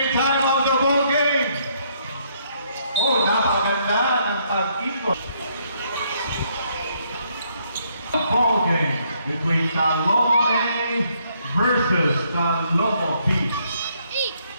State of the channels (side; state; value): both; inverted; correlation -0.70